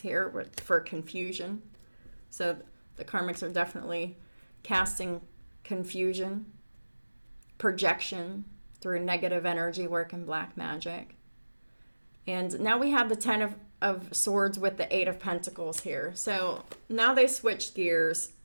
for confusion. So the karmics are definitely casting confusion, projection through negative energy work and black magic. And now we have the of Swords with the Eight of Pentacles here. So now they switched gears,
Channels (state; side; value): inverted; both; correlation -1.00